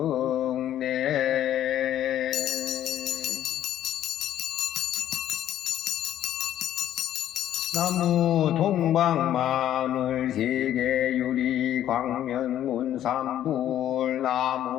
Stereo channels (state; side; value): quieter; right; 11.6 dB